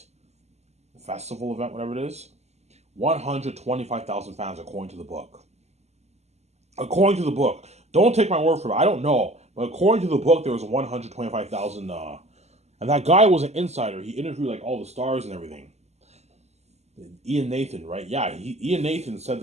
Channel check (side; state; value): left; late; 0.32 ms